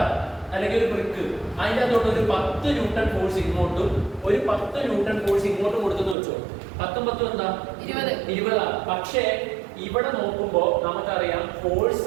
അല്ലെങ്കിൽ ഒരു ബ്രിക്ക്, അതിൻ്റെ അകത്തോട്ട് ഒരു 10 ന്യൂട്ടൺ ഫോഴ്സ് ഇങ്ങോട്ടും ഒരു 10 ന്യൂട്ടൺ ഫോഴ്സ് ഇങ്ങോട്ടും കൊടുത്തെന്ന് വെച്ചോ. 10 10 എന്താ 20. പക്ഷേ ഇവിടെ നോക്കുമ്പോൾ നമുക്കറിയാം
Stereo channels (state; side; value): drops out; left; at 6.2 s